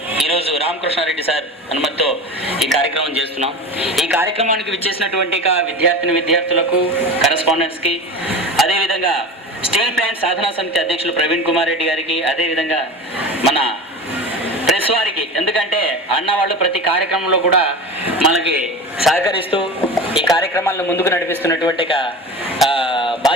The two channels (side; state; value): both; normal; correlation 0.30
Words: ఈరోజు రామకృష్ణారెడ్డి సార్ అనుమతితో ఈ కార్యక్రమం చేస్తున్నాం. ఈ కార్యక్రమానికి విచ్చేసినటువంటి విద్యార్థులకు కరెస్పాండెంట్స్కి, అదేవిధంగా స్టీల్ ప్లాంట్ సాధనా సమితి అధ్యక్షులు ప్రవీణ్ కుమార్ రెడ్డి గారికి, అదేవిధంగా మన ప్రెస్ వారికి, ఎందుకంటే అన్న వాళ్ళు ప్రతి కార్యక్రమంలో కూడా మనకి సహకరిస్తూ ఈ కార్యక్రమాలను ముందుకు నడిపిస్తున్నటువంటి